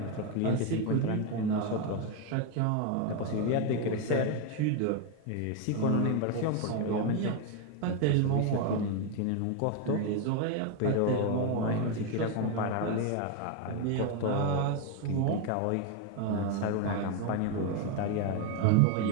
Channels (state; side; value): different; both; correlation 0.02